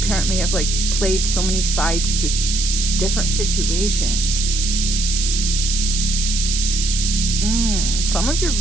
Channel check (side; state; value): right; noise; hiss, 2 dB below the sound